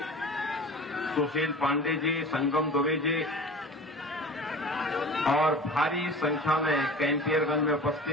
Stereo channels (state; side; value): normal; both; correlation 0.38